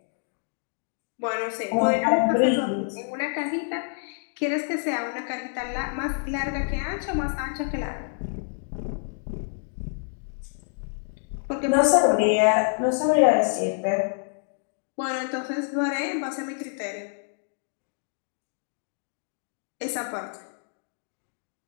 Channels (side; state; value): right; silent; digital silence